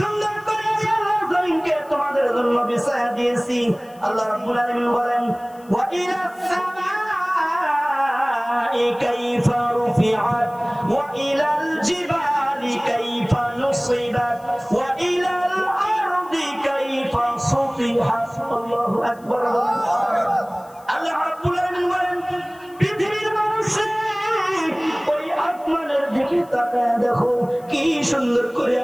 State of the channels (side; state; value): left; noise; hiss, 27 dB below the sound